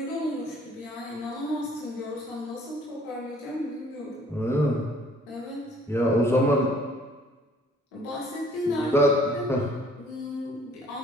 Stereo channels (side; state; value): both; normal; correlation 0.58